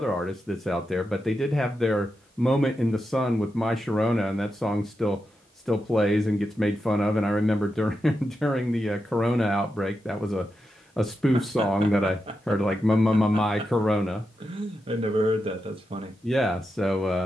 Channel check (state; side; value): normal; both; correlation 0.88